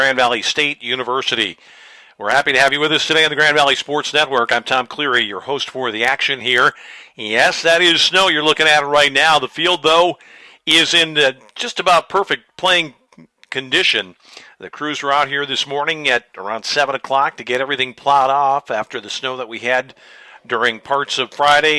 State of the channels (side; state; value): both; identical; correlation 1.00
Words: Valley State University. We're happy to have you with us today on the Grand Valley Sports Network. I'm Tom Cleary, your host for the action here. Yes, that is snow you're looking at right now. The field, though, is in just about perfect playing condition. The crews were out here this morning at around 7 o'clock to get everything plowed off after the snow that we had during parts of